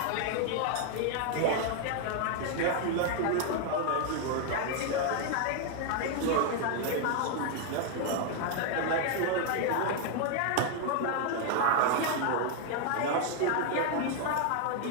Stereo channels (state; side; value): different; both; correlation 0.00